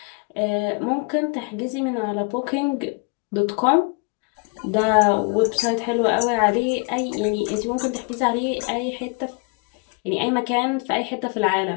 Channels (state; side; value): quieter; right; 33.1 dB